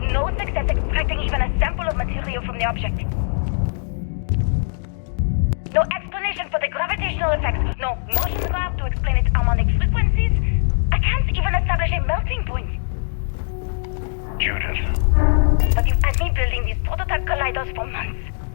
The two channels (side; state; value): right; silent; digital silence